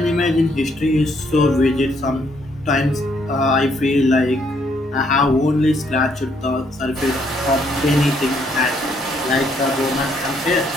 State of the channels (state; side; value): normal; both; correlation 0.70